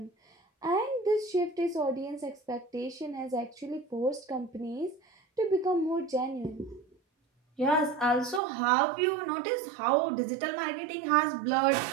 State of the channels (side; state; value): left; drops out; at 8.4 s